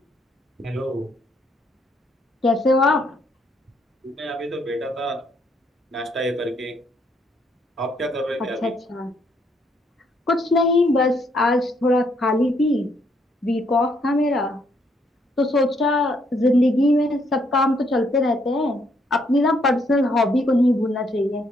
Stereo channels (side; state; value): both; normal; correlation 0.71